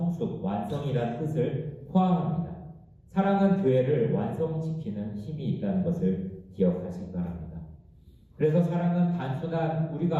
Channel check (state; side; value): identical; both; correlation 1.00